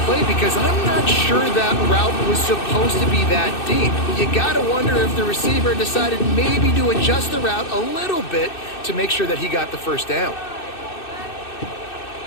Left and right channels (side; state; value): right; late; 2.6 ms